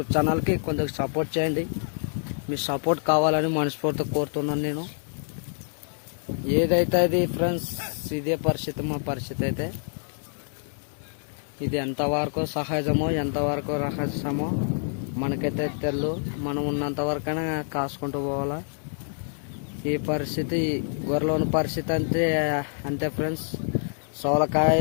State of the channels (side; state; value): right; silent; digital silence